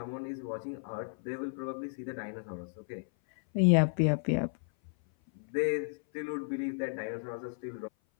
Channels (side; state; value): right; silent; 56 dB below the other